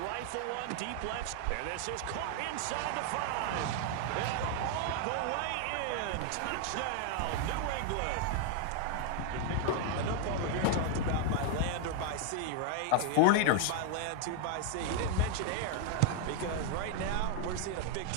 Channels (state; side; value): different; both; correlation 0.00